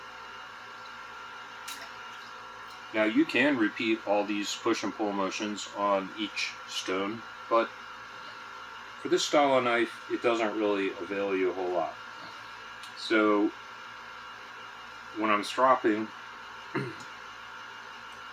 Now you can repeat all these push and pull motions on each stone, but for this style of knife, it doesn't really avail you a whole lot. So when I'm stropping,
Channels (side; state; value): both; identical; correlation 1.00